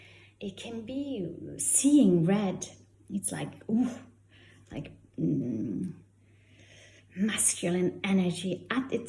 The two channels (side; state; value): both; identical; correlation 1.00